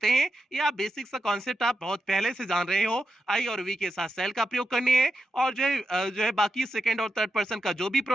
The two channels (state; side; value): normal; both; correlation 0.87